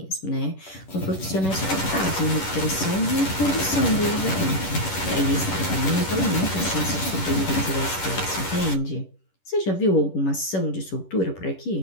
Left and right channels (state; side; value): late; right; 11 ms